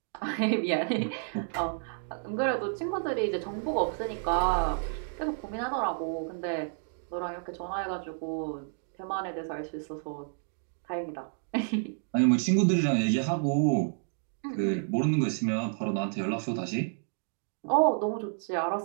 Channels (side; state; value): left; silent; digital silence